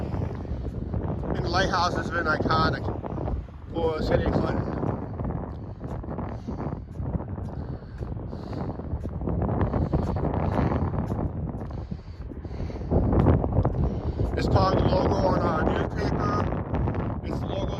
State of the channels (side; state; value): both; identical; correlation 1.00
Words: And the lighthouse has been iconic for City of Clinton. It's probably the logo on our newspaper. It's the logo